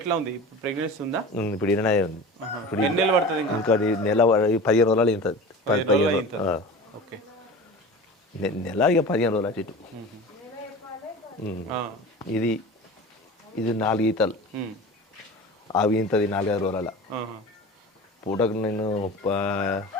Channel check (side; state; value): both; normal; correlation 0.35